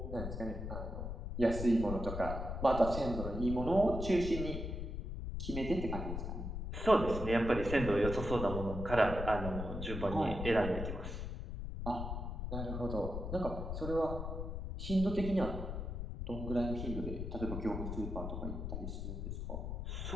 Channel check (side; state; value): left; noise; rumble, 4 dB below the sound